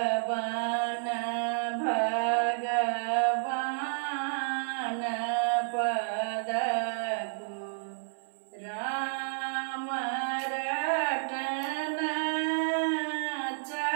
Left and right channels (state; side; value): silent; left; 55 dB below the other